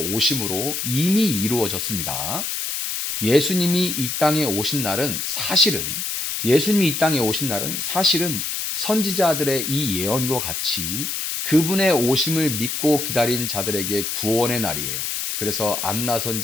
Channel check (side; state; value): left; noise; hiss, 3 dB below the sound